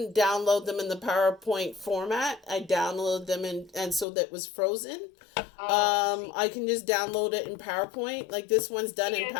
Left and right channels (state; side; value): drops out; right; at 4.0 s